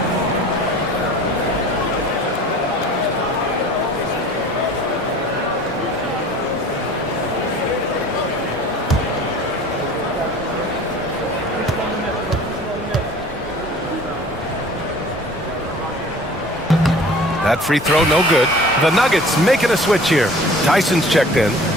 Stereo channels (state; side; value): normal; both; correlation 0.45